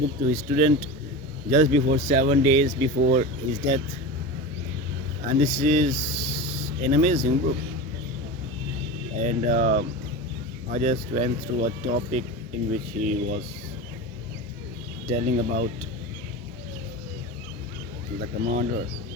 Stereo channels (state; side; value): normal; both; correlation 0.27